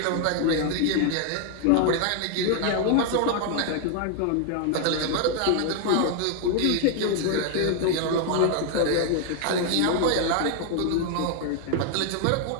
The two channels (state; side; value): different; both; correlation 0.00